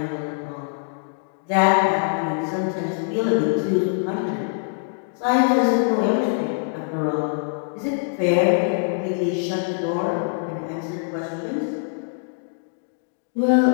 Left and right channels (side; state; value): right; silent; digital silence